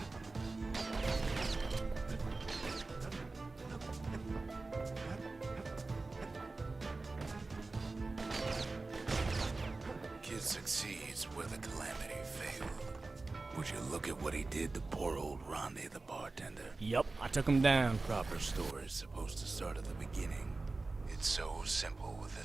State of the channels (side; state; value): left; quieter; 3.5 dB